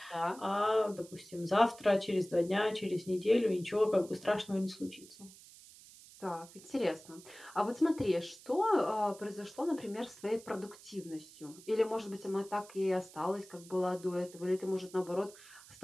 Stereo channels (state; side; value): noise; right; hiss, 20 dB below the sound